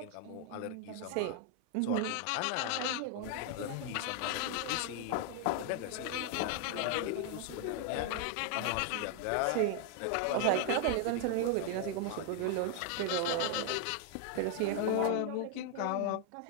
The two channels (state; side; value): different; both; correlation 0.00